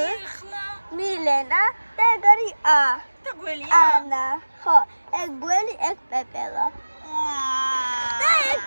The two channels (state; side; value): inverted; both; correlation -1.00